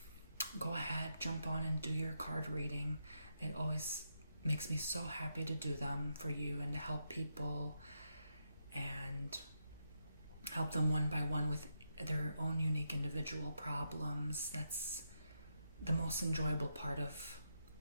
go ahead, jump on and do your card reading. It always makes me so happy to do them for you and to help people and help them one by one with their own unique individual problems. That's the most enjoyable part of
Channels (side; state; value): both; inverted; correlation -0.83